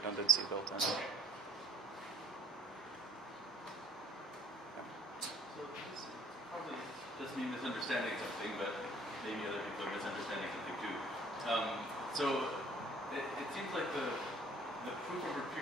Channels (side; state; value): both; normal; correlation 0.60